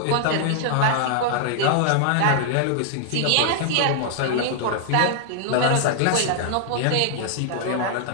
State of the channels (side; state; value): both; different; correlation -0.01